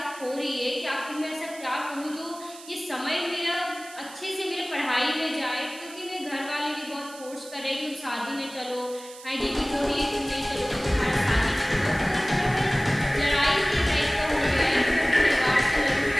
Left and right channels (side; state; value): right; noise; hiss, 17 dB below the sound